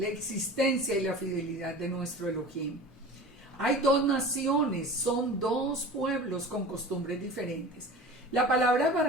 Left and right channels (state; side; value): normal; both; correlation 0.37